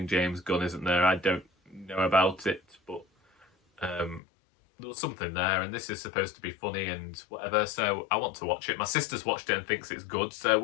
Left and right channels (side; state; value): right; drops out; at 4.2 s